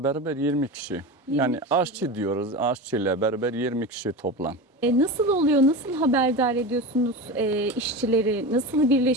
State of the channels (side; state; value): both; normal; correlation 0.26